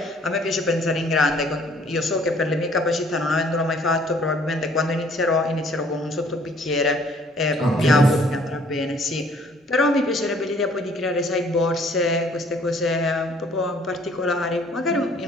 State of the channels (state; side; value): normal; both; correlation 0.59